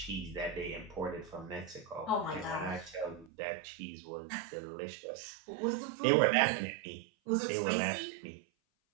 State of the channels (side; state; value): left; drops out; at 3.3 s